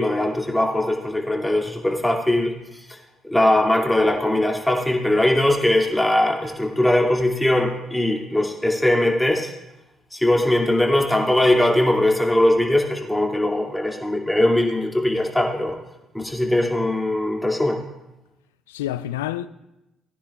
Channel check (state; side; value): normal; both; correlation 0.94